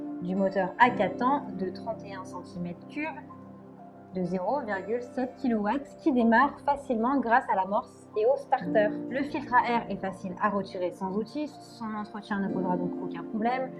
du moteur à 4 temps de 31 cm3 de 0,7 kW qui démarre facilement grâce à l'amorce et au starter. Le filtre à air est facile à retirer sans outil, son entretien ne posera donc aucun problème.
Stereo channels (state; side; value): identical; both; correlation 1.00